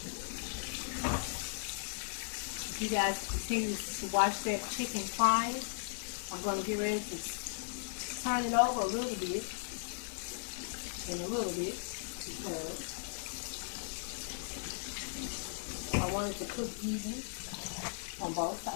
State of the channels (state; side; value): silent; right; digital silence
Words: If you guys continue to watch that chicken frying, I'm going to get ready to turn it over a little bit, because I want it to cook even on both